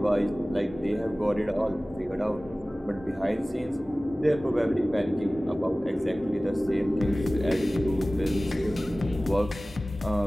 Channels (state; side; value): normal; both; correlation 0.98